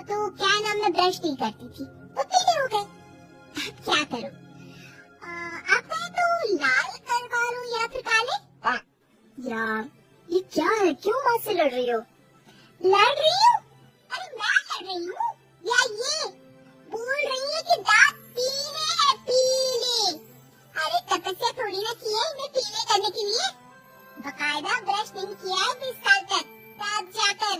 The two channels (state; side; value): identical; both; correlation 1.00